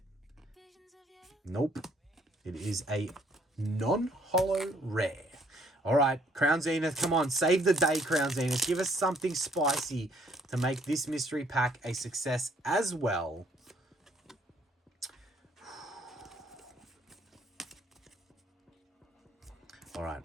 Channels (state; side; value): normal; both; correlation 0.64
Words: Nope. It is a non-holo rare. All right, Crown Zenith, come on. Save the day, Crown Zenith. Give us something spicy to make this mystery pack a success as well. All right.